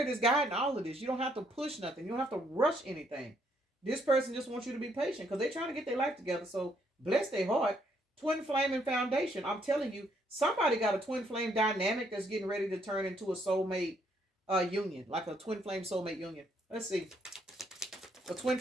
is guiding all of this. You don't have to push nothing. You don't have to rush anything. This person just wants you to be patient because they're trying to get their life together. So bless their heart. Twin flame and foundation. I'm telling you, somebody got a twin flame dynamic that's getting ready to turn into a soulmate union, like a twin flame soulmate union. Let's see. The twin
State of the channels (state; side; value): normal; both; correlation 0.71